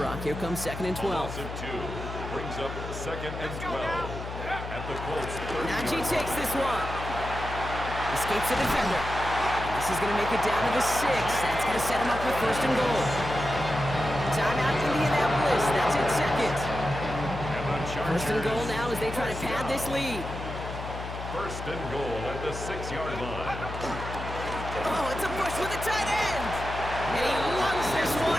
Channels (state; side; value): noise; left; hum, 8 dB below the sound